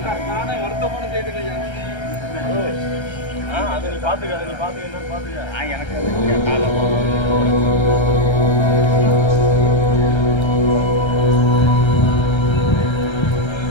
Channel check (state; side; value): late; right; 1.3 ms